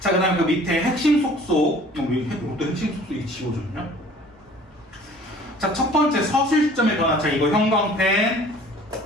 그 다음에 그 밑에 핵심 속속. 이것도 핵심 속속이 지워졌냐? 자, 첫 번째 서술 시점의 변화. 자, 이거 형광펜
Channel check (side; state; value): both; normal; correlation 0.50